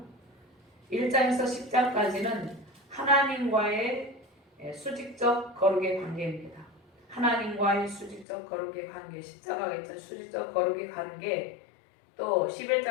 1장에서 10장까지는 하나님과의 수직적 거룩의 관계입니다. 하나님과의 수직적 거룩의 관계, 십자가가 있던 수직적 거룩의 관계, 또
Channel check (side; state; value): right; drops out; at 8.2 s